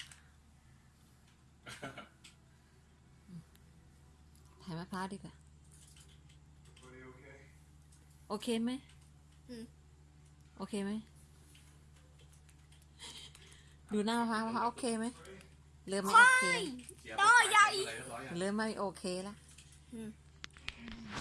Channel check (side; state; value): both; identical; correlation 1.00